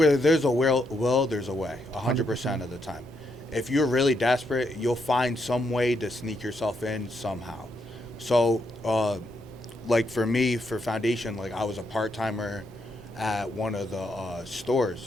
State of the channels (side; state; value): left; noise; hum, 29 dB below the sound